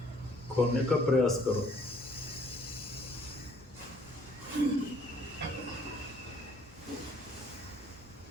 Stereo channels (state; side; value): normal; both; correlation 0.61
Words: खोने का प्रयास करो।